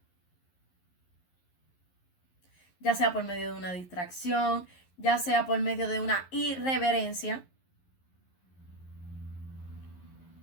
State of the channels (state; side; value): late; right; 11 ms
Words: Ya sea por medio de una distracción, ya sea por medio de una irreverencia,